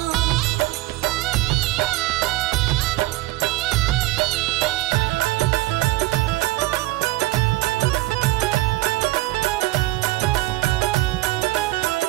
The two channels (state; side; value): quieter; left; 18.5 dB